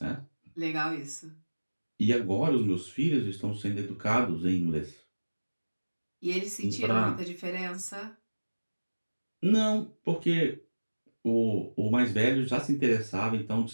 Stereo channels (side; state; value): both; inverted; correlation -1.00